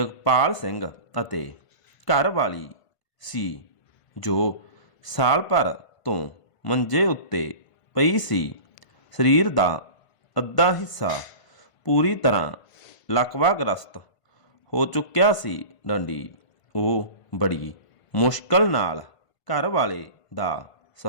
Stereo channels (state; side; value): late; right; 1.5 ms